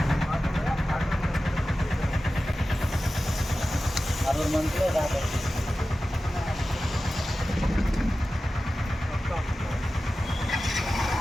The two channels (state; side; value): normal; both; correlation 0.94